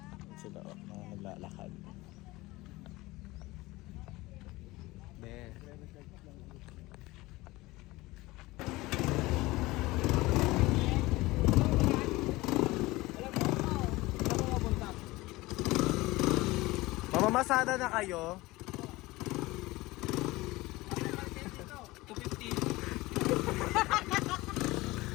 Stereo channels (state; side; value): quieter; right; 20.3 dB